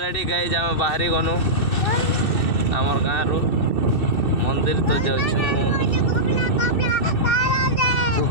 गाइज आम बाहरी गनु आमर गाँ रु मंदिर तो जाऊँ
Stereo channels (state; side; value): late; right; 2.6 ms